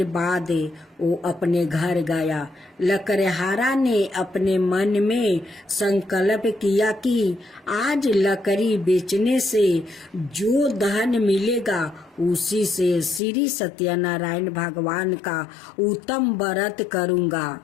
बाद वो अपने घर गया। लकड़हारा ने अपने मन में संकल्प किया कि आज लकड़ी बेचने से जो धन मिलेगा उसी से श्री सत्यनारायण भगवान का उत्तम व्रत करूँगा।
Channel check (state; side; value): drops out; right; at 13.2 s